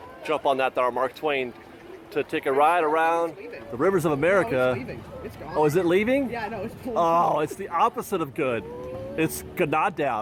jump on that, our Mark Twain, to take a ride around the rivers of America. No, it's leaving. It's gone. Oh, is it leaving? Yeah, no, it's pulling. Oh, it's the opposite of good. It's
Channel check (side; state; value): both; identical; correlation 1.00